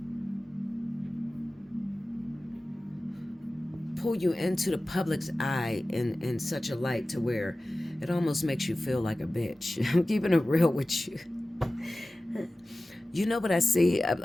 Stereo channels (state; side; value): normal; both; correlation 0.96